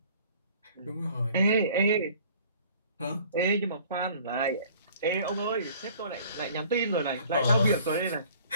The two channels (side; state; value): both; inverted; correlation -0.52